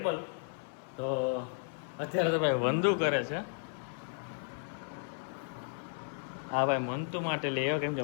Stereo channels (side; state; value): right; silent; digital silence